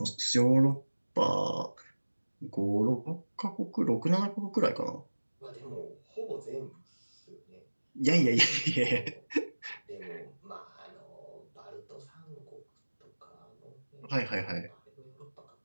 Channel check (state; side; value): inverted; both; correlation -1.00